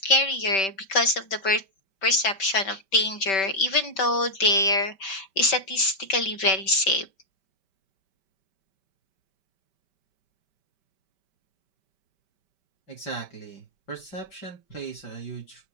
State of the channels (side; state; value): right; late; 5.2 ms